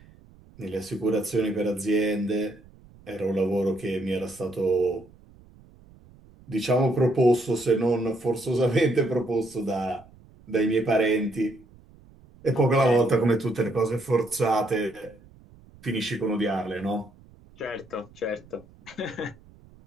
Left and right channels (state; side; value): noise; right; rumble, 25 dB below the sound